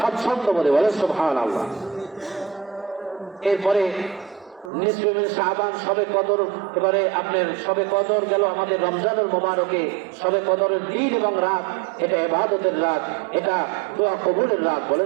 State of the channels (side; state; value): left; drops out; at 4.7 s